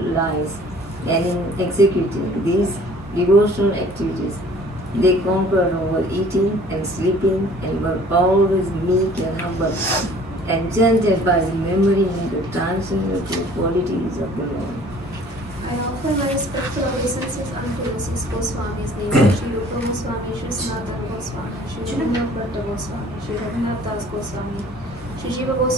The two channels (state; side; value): normal; both; correlation 0.52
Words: lives, and in executing these devotional activities, they conquered over eating and sleeping and were always meek and humble, enchanted by remembering the transcendental qualities of the Lord. I offer my respectful obeisances unto the six Goswamis, namely Sri Rupa Goswami, Sri Sanatana Goswami, Sri Raghunath Bhatta Goswami, Sri Raghunath Das Goswami, Sri Jiva